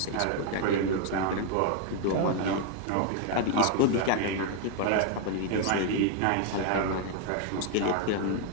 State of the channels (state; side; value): different; both; correlation 0.00